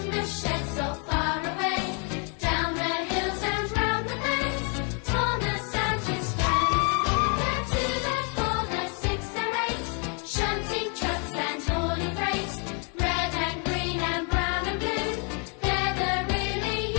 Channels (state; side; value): quieter; right; 37.8 dB